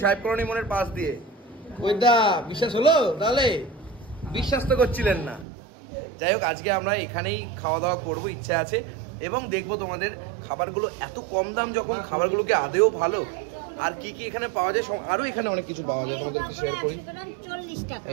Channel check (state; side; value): drops out; left; at 5.5 s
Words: সাহেব কলোনি মোড়ের পাশ দিয়ে। ওই দা বিশ্বাস হলো তাহলে? বিশ্বাস তো করছিলেন না। যাই হোক, আজকে আমরা এখানেই খাওয়া দাওয়া করবো, ইচ্ছা আছে, এবং দেখবো তোমাদের খাবারগুলো এত কম দাম যখন, খাবারগুলোকে আদেও ভালো, আর কি কি এখানে পাওয়া যায়, আরো এখানে অনেক কিছু পাওয়া যায়, তোমাদেরকে শেয়ার করি।